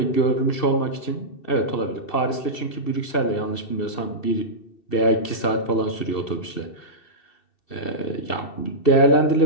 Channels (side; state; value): right; late; 2.7 ms